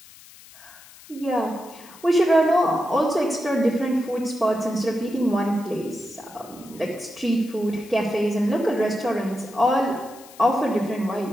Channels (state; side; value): noise; left; hiss, 21 dB below the sound